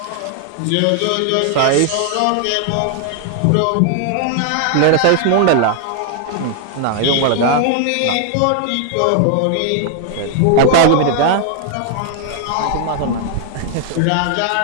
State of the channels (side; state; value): both; different; correlation 0.00